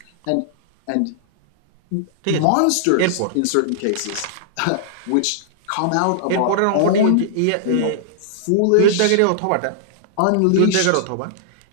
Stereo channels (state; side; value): different; both; correlation -0.01